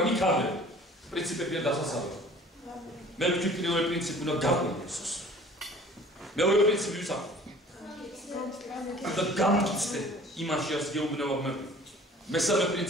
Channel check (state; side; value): normal; both; correlation 0.49